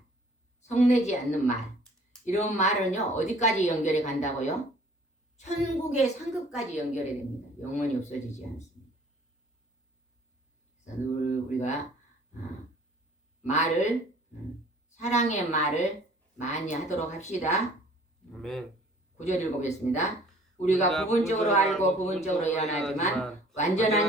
성내지 않는 말, 이런 말은요 어디까지 연결해 간다고요? 천국의 상급까지 연결해 됩니다. 영원히 없어지지 않습니다. 그래서 늘 우리가 말을, 사랑의 말을 많이 하도록 합시다. 아멘. 9절 읽어보겠습니다. 우리가 부분적으로 알고 부분적으로 일어나지만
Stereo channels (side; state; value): both; normal; correlation 0.53